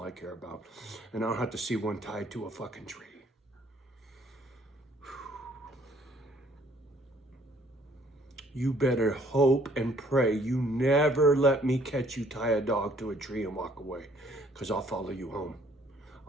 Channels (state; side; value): normal; both; correlation 0.61